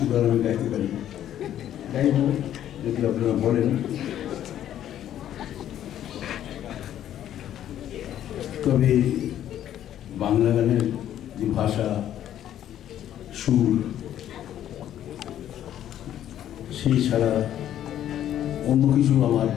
গান আমি গাইতে পারি, গাইব যদি আপনারা বলেন। তবে বাংলা গানের যে ভাষা, সুর, সেই ছাড়া অন্য কিছু আমার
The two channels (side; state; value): right; quieter; 11.2 dB